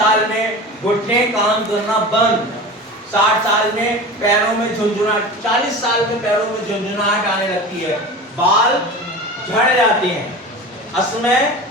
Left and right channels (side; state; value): both; normal; correlation 0.32